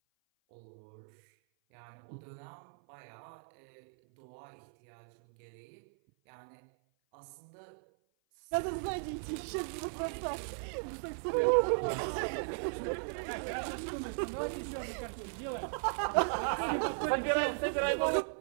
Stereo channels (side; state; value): left; silent; 53 dB below the other